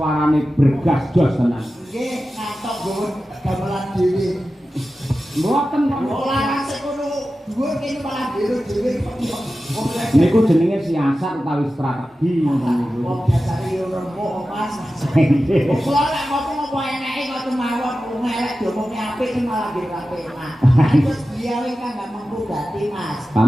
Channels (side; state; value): both; normal; correlation 0.94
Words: bergas jos tenan. Nggih, kantok nggon gamelan dhewe. Mboten kok. Ora rasik kono dhuwur kene malah biro dhewe. Niku jenenge siasat utawi strategi ngono niku. Wong dasare yo rembuk Mas. Kula lek ngopo-ngopo eneke kok mawon ngelek diomongi apik kan malah nggih apik Mas. Terus dia wis kan gak mampu dadi Mas.